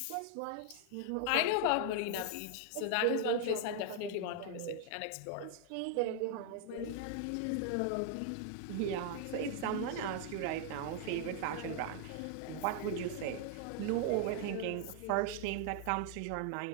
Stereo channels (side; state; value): both; different; correlation 0.00